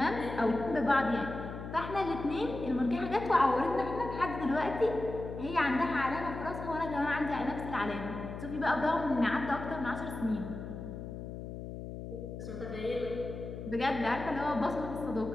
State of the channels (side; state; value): left; noise; hum, 9 dB below the sound